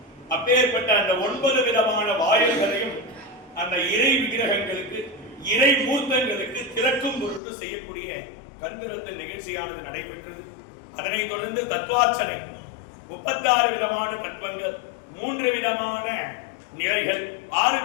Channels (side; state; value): right; drops out; at 7.4 s